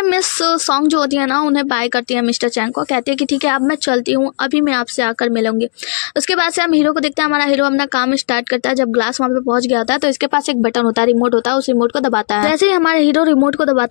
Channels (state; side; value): silent; right; digital silence